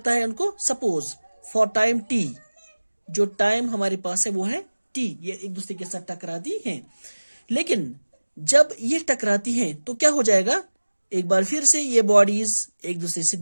है उनको। सपोज फॉर टाइम टी, जो टाइम हमारे पास है वो है टी, ये एक दूसरे के साथ टकराती हैं। लेकिन जब ये टकराती हैं तो क्या हो जाएगा, एक बार फिर से ये बॉडीज एक दूसरे से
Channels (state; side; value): inverted; both; correlation -1.00